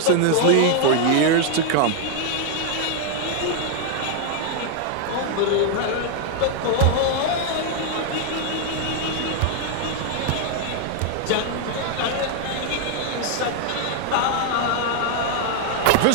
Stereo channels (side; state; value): both; different; correlation 0.00